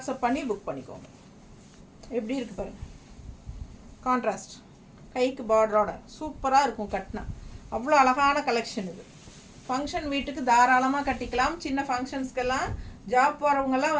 பண்ணி புக் பண்ணிக்கோங்க. எப்படி இருக்குது பாருங்கள். கான்ட்ராஸ்ட் கைக்கு பார்டரோட சூப்பராக இருக்கும் கட்டினா. அவ்வளோ அழகான கலெக்ஷன் இது. ஃபங்க்ஷன் வீட்டுக்கு தாராளமாக கட்டிக்கலாம். சின்ன ஃபங்க்ஷன்ஸ்க்கெல்லாம் ஜாப் போகிறவங்கெல்லாம்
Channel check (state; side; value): identical; both; correlation 1.00